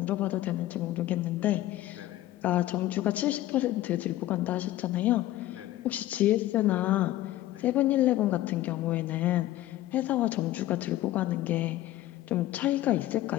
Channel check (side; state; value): right; quieter; 15.0 dB